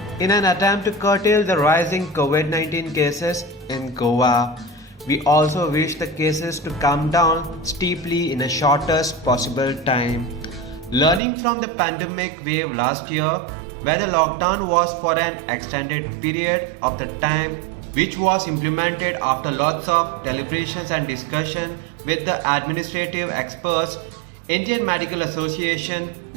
in an attempt to curtail the rising COVID-19 cases in Goa. We also wish the cases to come down steeply in the shortest possible time. Learning from the pandemic wave last year, where the lockdown was for an extended period of the time, which was implemented after lots of deliberations and discussion with the administrative experts, Indian Medical Association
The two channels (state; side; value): drops out; left; at 11.2 s